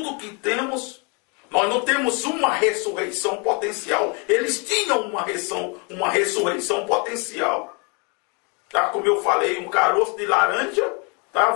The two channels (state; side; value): quieter; right; 33.4 dB